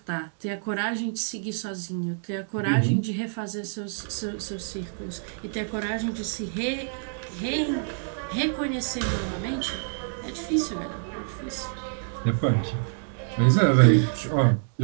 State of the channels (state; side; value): silent; left; digital silence